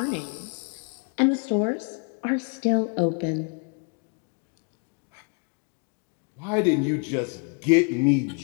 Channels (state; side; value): quieter; right; 37.8 dB